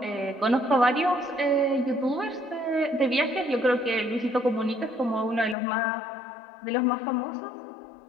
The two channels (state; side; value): drops out; right; at 5.6 s